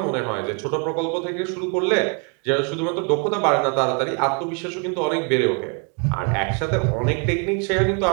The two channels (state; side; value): quieter; left; 37.0 dB